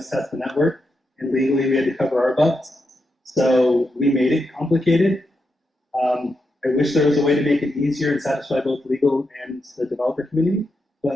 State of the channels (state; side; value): normal; both; correlation 0.85